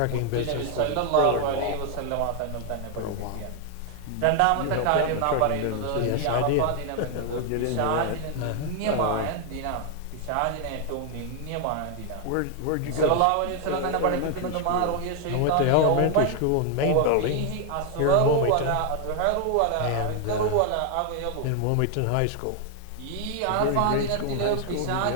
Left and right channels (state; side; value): different; both; correlation 0.00